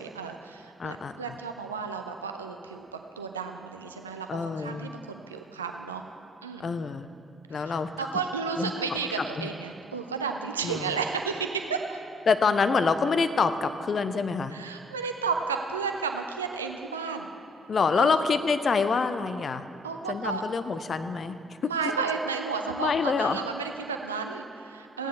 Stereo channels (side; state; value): both; normal; correlation 0.53